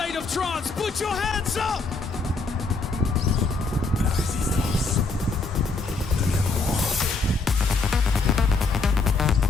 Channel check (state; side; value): quieter; right; 3.8 dB